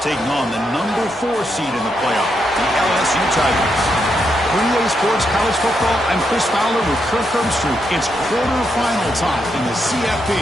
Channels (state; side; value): normal; both; correlation 0.81